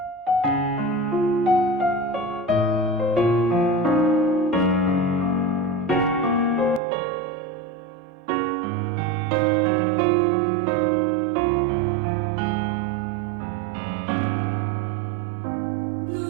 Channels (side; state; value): left; drops out; at 6.8 s